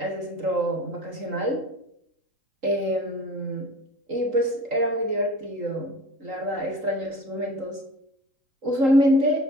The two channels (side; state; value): left; late; 3.8 ms